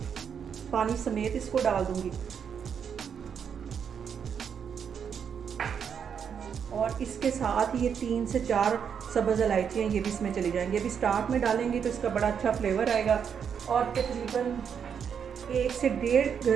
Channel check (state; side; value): quieter; left; 7.4 dB